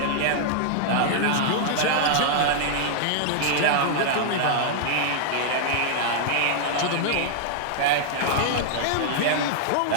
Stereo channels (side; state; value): both; different; correlation -0.01